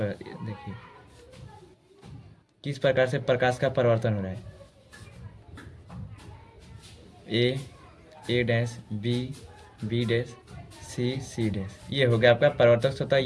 देखिए किस प्रकार से प्रकाश का परिवर्तन हो रहा है। A dash, B dash, C dash, ये हो गया आपका परावर्तक सतह,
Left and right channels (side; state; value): both; identical; correlation 1.00